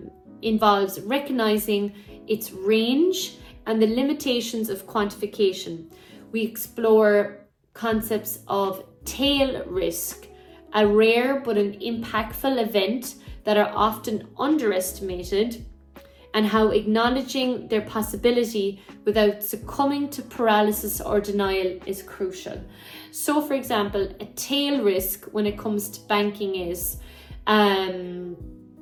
involves recognizing its range and the limitations of quantification. We explore concepts of tail risk, a rare but an impactful event that are often underestimated, and how acknowledging their possibility without succumbing to paralysis or denial is crucial. So, for example, a tail risk when it comes to banking is, I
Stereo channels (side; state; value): both; identical; correlation 1.00